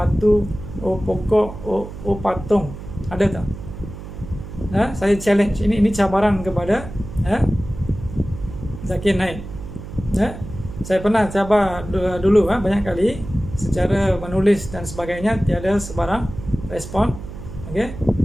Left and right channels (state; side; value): noise; right; hum, 11 dB below the sound